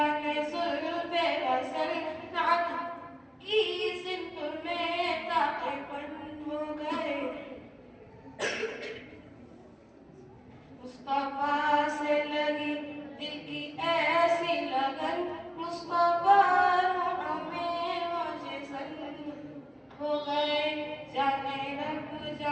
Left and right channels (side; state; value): both; identical; correlation 1.00